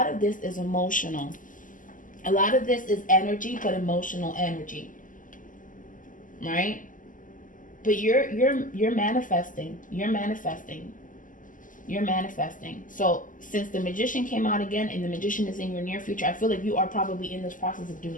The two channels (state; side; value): late; right; 0.38 ms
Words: of this is emotional. A lot of this is energy, but emotional energy. Right? But you're manifesting. You're manifesting. You're manifesting. So since the Magician came out again and the Magician is in your near future, I feel like you are probably in this process of